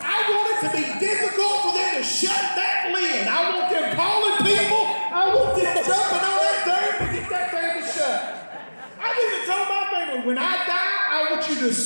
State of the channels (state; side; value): inverted; both; correlation -1.00